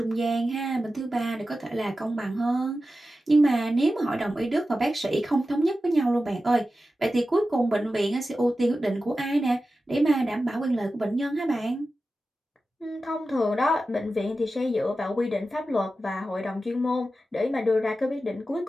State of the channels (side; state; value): both; normal; correlation 0.93